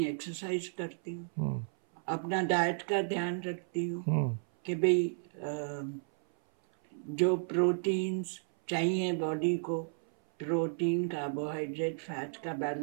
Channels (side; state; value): left; silent; 56 dB below the other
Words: एक्सरसाइज करती हूँ। अपना डाइट का ध्यान रखती हूँ कि भाई जो प्रोटीन्स चाहिए बॉडी को, प्रोटीन, कार्बोहाइड्रेट, फैट का